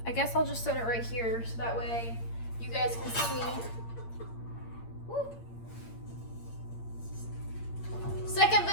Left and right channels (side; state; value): right; late; 8.7 ms